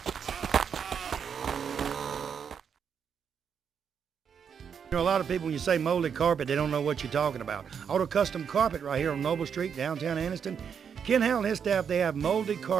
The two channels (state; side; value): quieter; left; 7.2 dB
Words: You know, a lot of people, when you say molded carpet, they don't know what you're talking about. Auto Custom Carpet right here on Noble Street, downtown Anniston. Ken Howell and his staff, they have molded